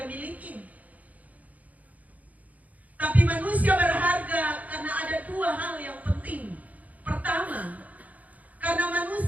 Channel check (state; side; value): late; left; 0.075 ms